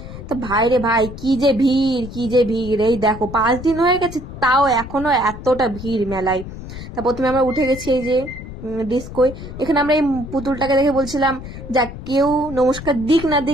তো ভাই রে ভাই, কি যে ভিড়, কি যে ভিড়! এই দেখো 5 দিন হয়ে গেছে, তাও এখনো এতটা ভিড় মেলায়। তা প্রথমে আমরা উঠে গেছি এই যে ডিস্কোয়। এখানে আমরা এই পুতুলটাকে দেখে বলছিলাম, যা কেউ নমস্কার দিক না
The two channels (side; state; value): left; noise; rumble, 11 dB below the sound